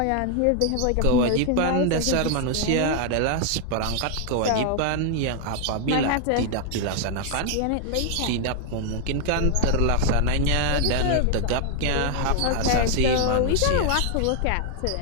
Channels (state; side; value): different; both; correlation 0.00